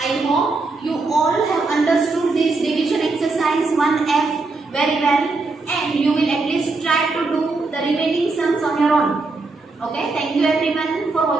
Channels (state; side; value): quieter; left; 3.7 dB